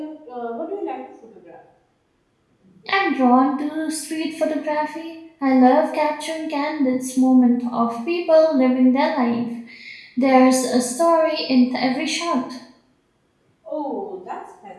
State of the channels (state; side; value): identical; both; correlation 1.00